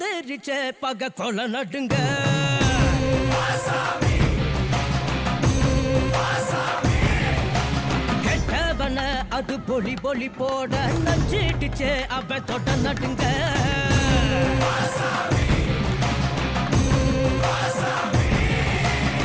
பக கொல நடுங்க கெட்டவன அது பொலி பொலி போட நஞ்சிடுச்சே அவ தொட்ட நடுங்க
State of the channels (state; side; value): identical; both; correlation 1.00